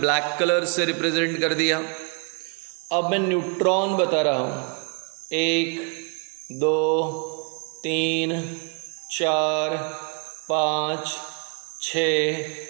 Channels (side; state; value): left; quieter; 38.9 dB